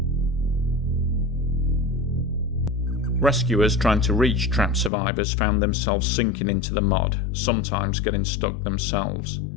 Rescuers trying to reach trapped survivors found themselves sinking into the mud, sometimes getting stuck themselves.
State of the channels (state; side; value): drops out; right; at 4.9 s